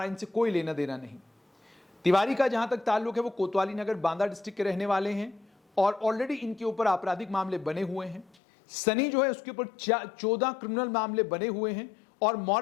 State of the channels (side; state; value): right; drops out; at 8.3 s